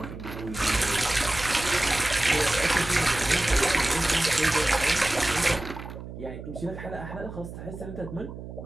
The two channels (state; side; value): noise; right; hum, 11 dB below the sound